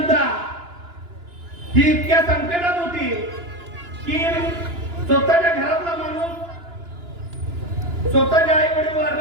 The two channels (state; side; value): late; left; 2.9 ms